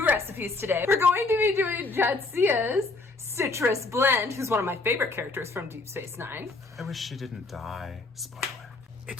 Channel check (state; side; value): quieter; right; 3.5 dB